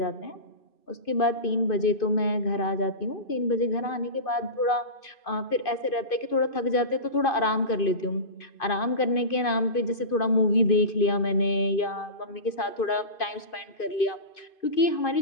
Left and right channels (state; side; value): late; right; 2.5 ms